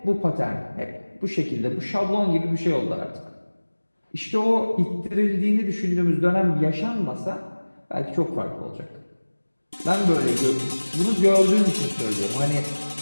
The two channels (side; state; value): both; inverted; correlation -1.00